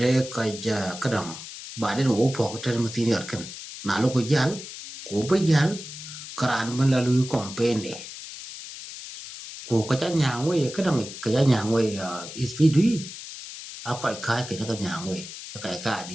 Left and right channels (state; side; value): noise; left; hiss, 12 dB below the sound